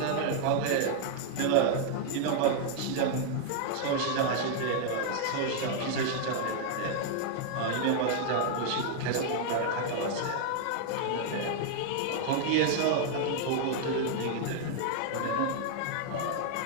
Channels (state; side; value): different; both; correlation 0.00